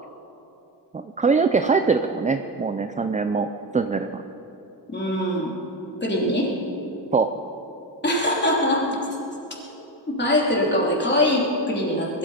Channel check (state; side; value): normal; both; correlation 0.16